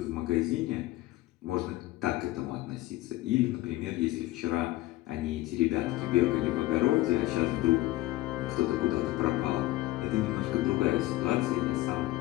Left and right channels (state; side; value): quieter; right; 17.8 dB